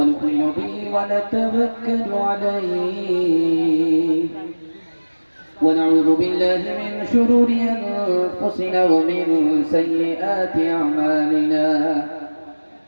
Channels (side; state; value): both; inverted; correlation -1.00